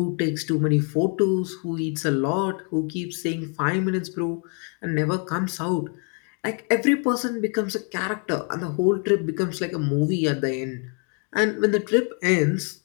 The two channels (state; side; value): quieter; right; 39.5 dB